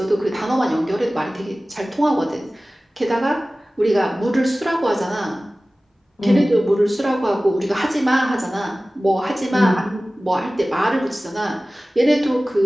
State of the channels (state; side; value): normal; both; correlation 0.97